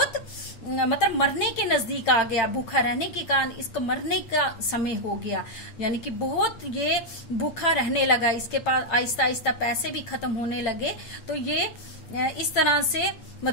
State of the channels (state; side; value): late; right; 8.8 ms